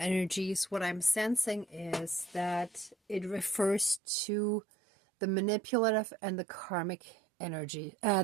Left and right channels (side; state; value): left; drops out; at 4.0 s